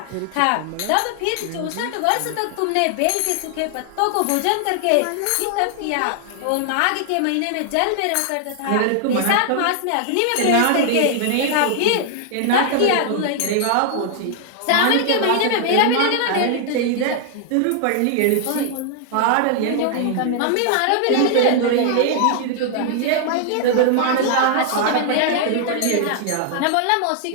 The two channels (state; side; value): different; both; correlation 0.00